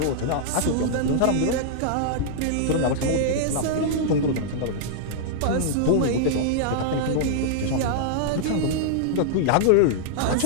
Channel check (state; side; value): different; both; correlation -0.02